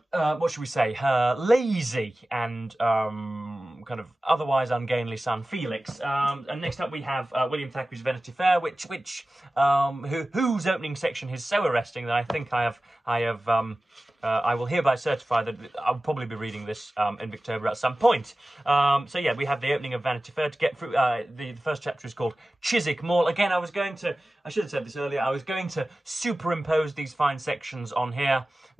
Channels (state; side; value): normal; both; correlation 0.96